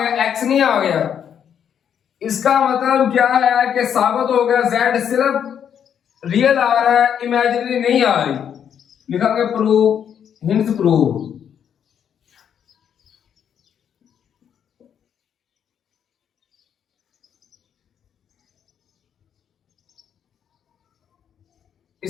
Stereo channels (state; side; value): quieter; right; 8.6 dB